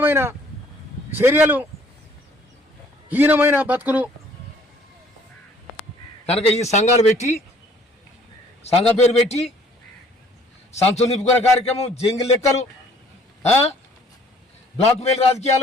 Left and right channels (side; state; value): both; normal; correlation 0.58